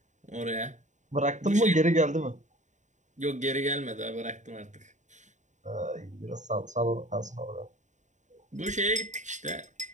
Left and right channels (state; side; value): late; left; 0.35 ms